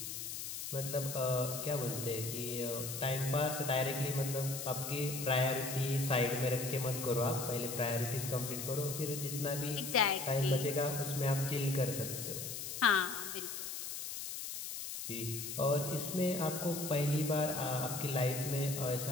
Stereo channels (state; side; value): noise; left; hiss, 6 dB below the sound